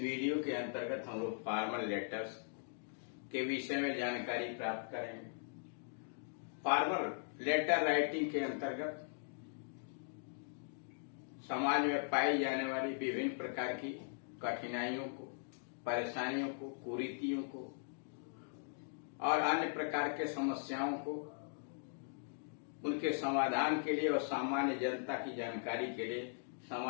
के अंतर्गत हम लोग फॉर्मल लेटर्स के विषय में जानकारी प्राप्त करेंगे। फॉर्मल लेटर राइटिंग के अंतर्गत समाज में पाई जाने वाली विभिन्न प्रकार की कठिनाइयों को, परेशानियों को, कुरीतियों को और अन्य प्रकार के समस्याओं को, उनके समाधान के लिए और सामान्य जनता की जानकारी के लिए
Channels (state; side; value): silent; right; digital silence